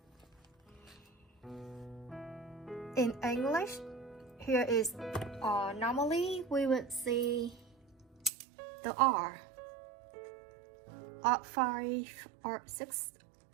In English, here is normally we would see the R, R5, R6,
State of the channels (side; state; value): left; drops out; at 8.3 s